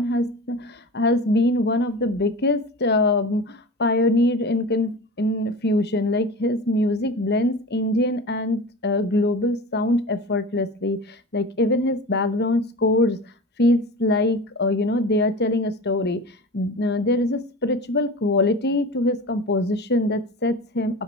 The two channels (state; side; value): normal; both; correlation 0.32